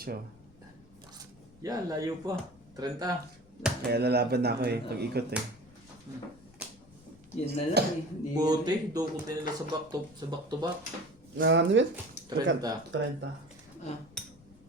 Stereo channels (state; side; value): noise; left; rumble, 26 dB below the sound